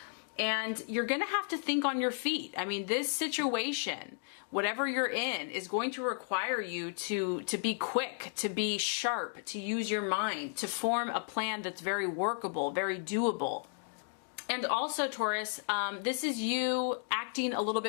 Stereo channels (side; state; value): right; silent; 55 dB below the other